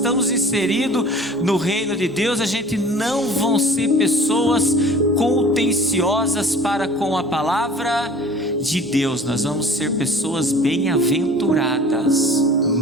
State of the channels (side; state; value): both; normal; correlation 0.46